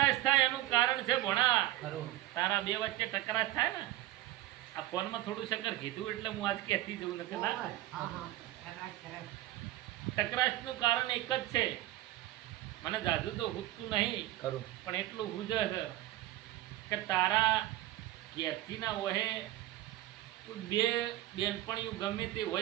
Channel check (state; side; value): quieter; left; 15.8 dB